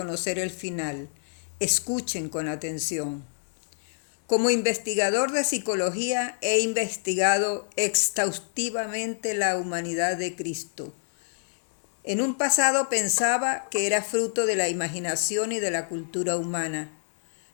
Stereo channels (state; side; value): silent; right; digital silence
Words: el final. Escuchen con atención. Como investigador de psicología he investigado exhaustivamente la humanidad de Cristo. En un pasado pensaba que era fruto de la imaginación y de la cultura humana,